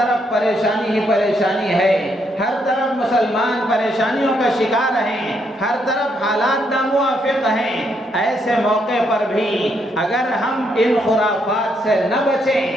پریشانی ہی پریشانی ہے، ہر طرف مسلمان پریشانیوں کا شکار ہیں، ہر طرف حالات ناموافق ہیں، ایسے موقع پر بھی اگر ہم ان خرافات سے نہ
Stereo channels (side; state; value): both; normal; correlation 0.75